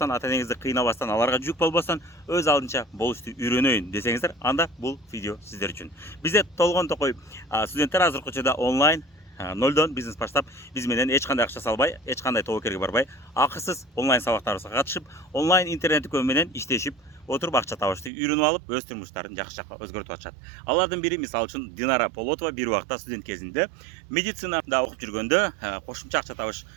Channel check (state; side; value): drops out; left; at 18.1 s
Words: ата энеңизди кыйнабастан, аларга жүк болбостон, өз алдынча болушту үйрөнөйүн десеңиздер, анда бул видео сиздер үчүн. Бизде толгон токой студенттер азыркы учурда онлайн нолдон бизнес баштап, биз менен эч кандай акча салбай, эч кандай тобокерге барбай, акысыз онлайн сабактарыбызга катышып, онлайн интернет дүкөн менен иштешип, отуруп акча табышты үйрөнүп алып, өз турмуштарын жакшы жакка өзгөртүп атышат. Алардын бири мисалы үчүн Динара Полотова бир убакта студент кезинде медицинада окуп жүргөндө кошумча акча табыш